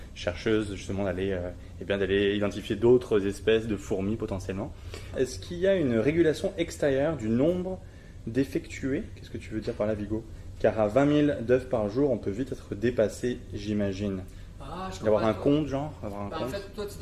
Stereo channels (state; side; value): identical; both; correlation 1.00